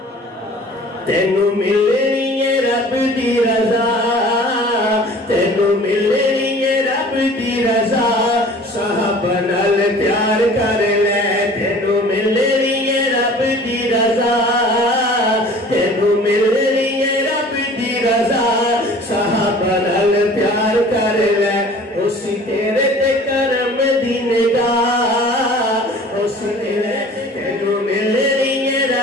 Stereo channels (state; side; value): normal; both; correlation 0.46